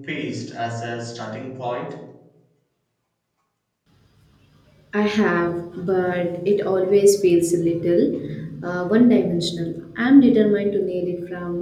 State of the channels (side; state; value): both; identical; correlation 1.00